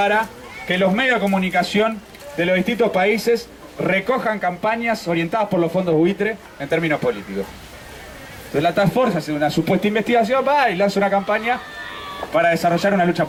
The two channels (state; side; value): identical; both; correlation 1.00